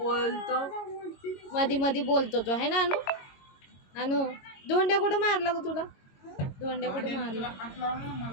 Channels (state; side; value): late; right; 22 ms